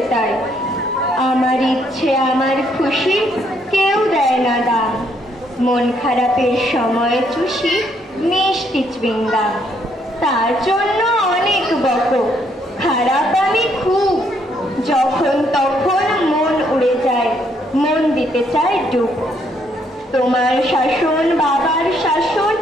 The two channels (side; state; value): both; normal; correlation 0.71